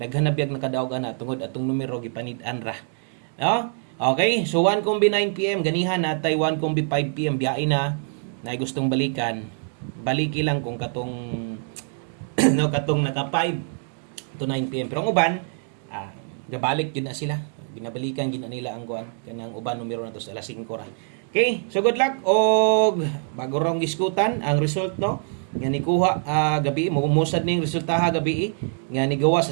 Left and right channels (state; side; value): silent; left; 62 dB below the other